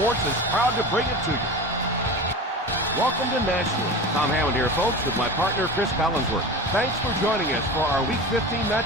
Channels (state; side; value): normal; both; correlation 0.31